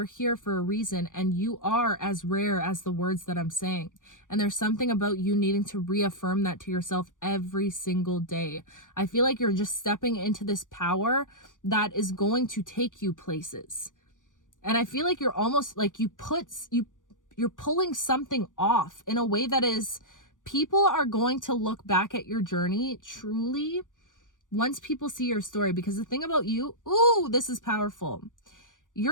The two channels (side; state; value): right; late; 0.87 ms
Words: here for a reason, and you are as rare as the words that I'm saying. And there's something about you needing to reaffirm that to yourself every single day. I feel like you're just stepping into this power that is going to take you places. And I feel like you're almost like you're pulling something off in a way that is, people are going to look back at your journey truly once people see your story. Because the thing about you, ooh, this is powerful.